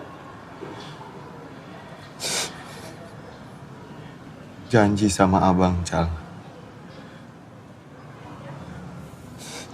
Janji sama abang, Cal.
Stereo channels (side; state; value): both; identical; correlation 1.00